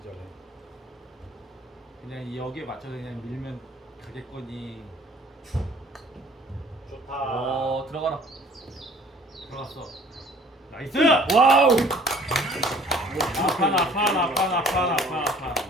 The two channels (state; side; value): normal; both; correlation 0.53